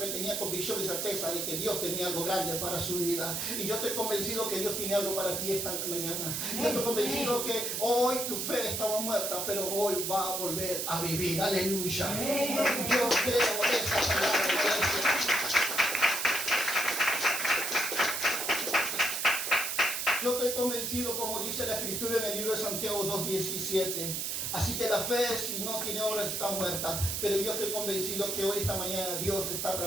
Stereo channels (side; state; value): right; noise; hiss, 1 dB below the sound